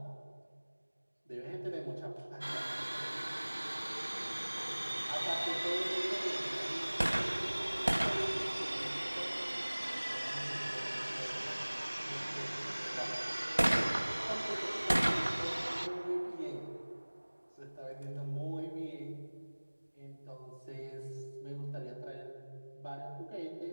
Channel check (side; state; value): both; inverted; correlation -1.00